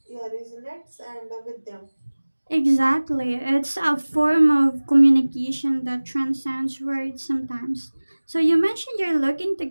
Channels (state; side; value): inverted; both; correlation -1.00